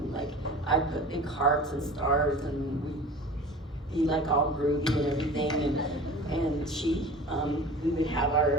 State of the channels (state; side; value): normal; both; correlation 0.39